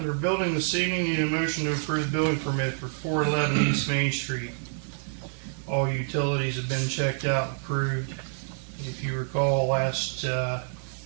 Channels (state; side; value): silent; left; digital silence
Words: building this evening, need a motion to approve building permit for 411 East Main Street. All utilities have been checked out and approved. If you recall, last